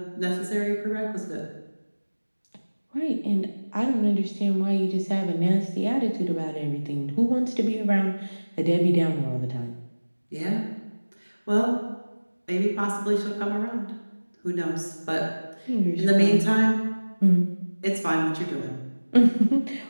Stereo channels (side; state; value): both; inverted; correlation -1.00